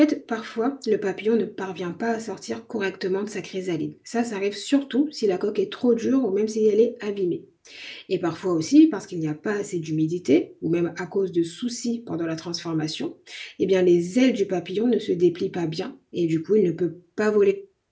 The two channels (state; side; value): identical; both; correlation 1.00